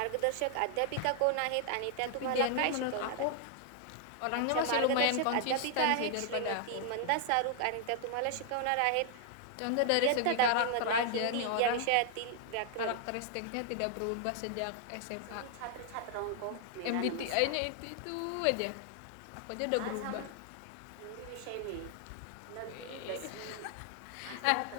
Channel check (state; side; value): different; both; correlation 0.00